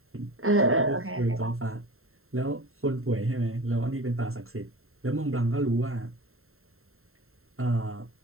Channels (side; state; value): left; late; 0.62 ms